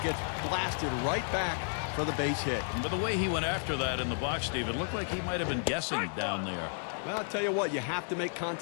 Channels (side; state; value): right; silent; digital silence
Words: gets blasted right back for the base hit. But the way he went after that in the box, Steve, it looked like he might have been guessing down there. Well, I'll tell you what, you have to make